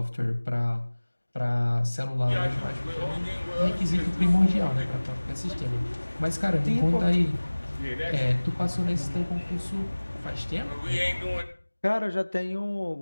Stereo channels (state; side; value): inverted; both; correlation -1.00